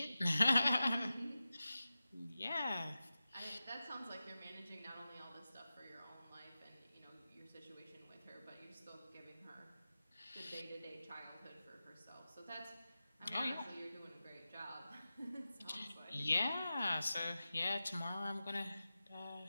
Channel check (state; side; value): inverted; both; correlation -0.94